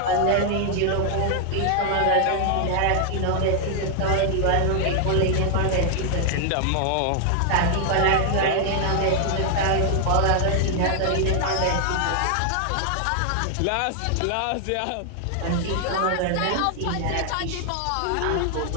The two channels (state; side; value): different; both; correlation 0.00